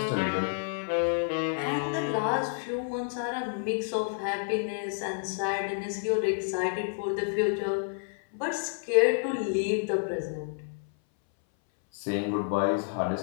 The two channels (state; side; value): silent; right; 58 dB below the other